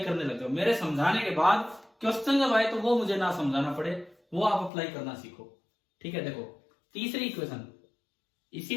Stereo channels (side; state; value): right; drops out; at 4.7 s